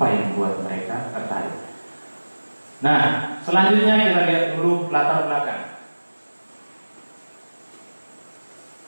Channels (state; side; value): inverted; both; correlation -1.00